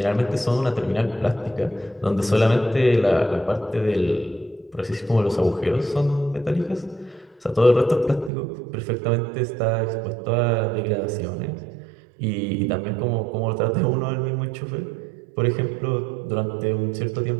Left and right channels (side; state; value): left; drops out; at 8.3 s